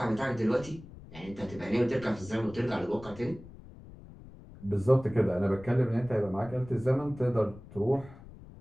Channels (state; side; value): noise; left; rumble, 18 dB below the sound